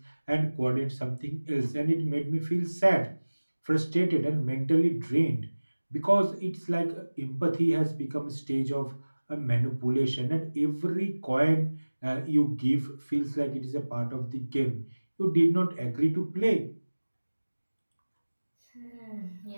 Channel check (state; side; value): inverted; both; correlation -1.00